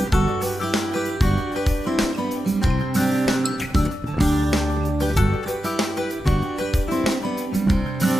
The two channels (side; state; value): both; normal; correlation 0.90